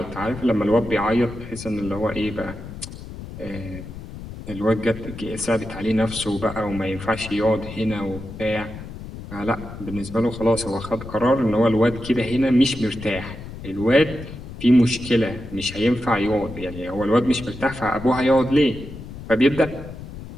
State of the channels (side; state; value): left; noise; rumble, 12 dB below the sound